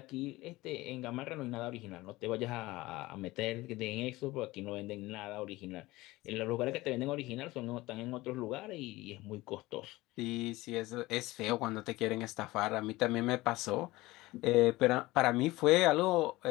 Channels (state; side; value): quieter; right; 19.5 dB